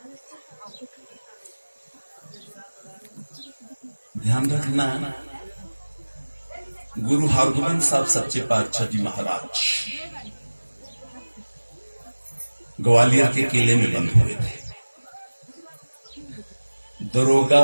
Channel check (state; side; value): inverted; both; correlation -1.00